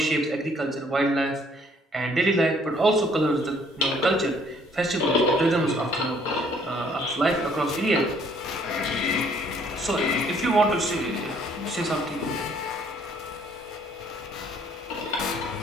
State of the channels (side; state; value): both; normal; correlation 0.62